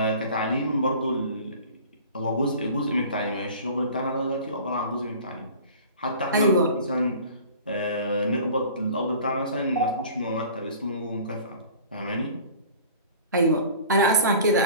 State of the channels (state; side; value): inverted; both; correlation -0.43